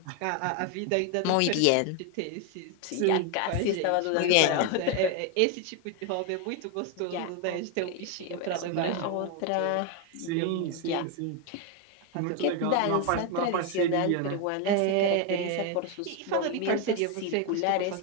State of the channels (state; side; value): different; both; correlation 0.01